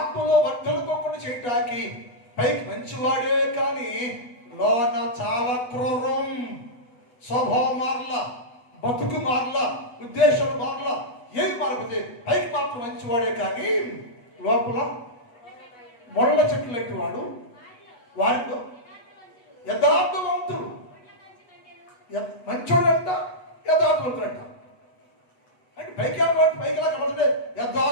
వర్ధలుకోకుండా చేయటానికి పైకి మంచివాడే, కానీ లోన చాలా క్రూరం. స్వభావం మారలా, బతుకు మారలా, ఉద్దేశం మారలా, ఏమి మారిపోతే పైకి మాత్రం మంచివాడే, కానీ లోపల ముళ్ళ చెట్లు లాంటి వాడు. వారిలో యథార్థవంతుడు, మంచోడంట, యథార్థవంతుడంట. అంటే పైకిలా కనబడితే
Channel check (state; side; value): late; right; 8.1 ms